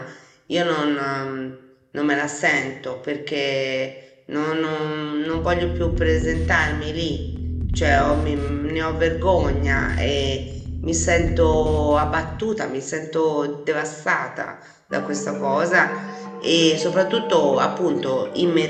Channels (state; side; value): identical; both; correlation 1.00